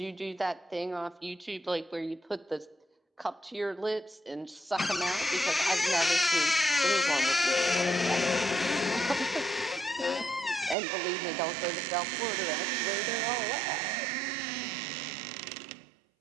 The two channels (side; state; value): left; drops out; at 10.8 s